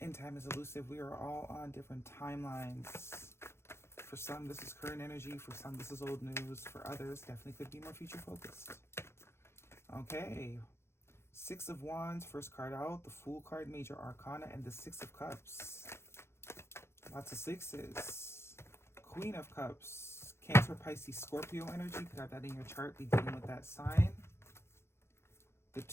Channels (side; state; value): right; late; 0.12 ms